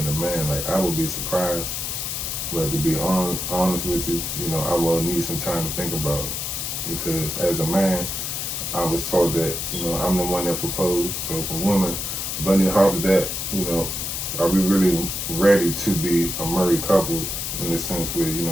a man. Like, I would be surprised, but to be honest with you, I will need some time to think about it, because as a man, I was taught that, I'm the one that proposed. So if a woman bunny hops that, are we really ready to be a married couple in the sense where,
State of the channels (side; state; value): left; noise; hiss, 3 dB below the sound